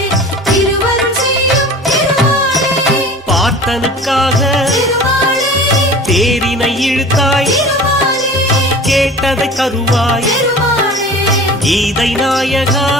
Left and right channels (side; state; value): both; normal; correlation 0.40